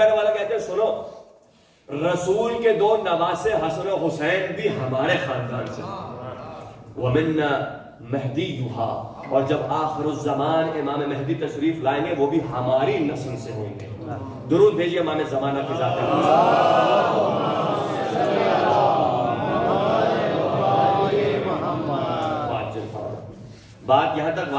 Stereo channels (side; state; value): both; identical; correlation 1.00